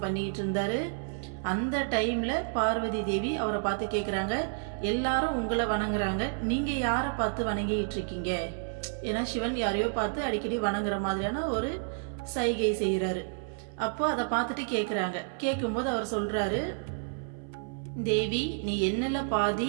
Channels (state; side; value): silent; left; 58 dB below the other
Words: பண்ணிக்கிட்டு இருந்தாரு. அந்த டைம்ல பார்வதி தேவி அவரை பார்த்து கேக்குறாங்க, எல்லாரும் உங்களை வணங்குறாங்க, நீங்க யாரை பார்த்து வணங்கிட்டு இருக்கீங்க? ஏன்னா சிவன் யாரையோ பார்த்து அடிக்கடி வணங்குற மாதிரியான ஒரு சைகை செய்யறாரு. அப்போ அதை பார்த்துட்டு கேக்குறாங்க. கேட்கும்போது அவர் சொல்றாரு, தேவி நீ என்னல